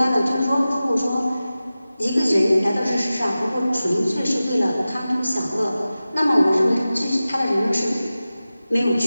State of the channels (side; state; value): both; inverted; correlation -0.95